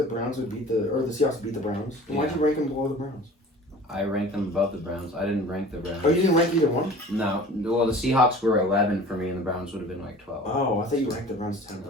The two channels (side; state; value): both; normal; correlation 0.43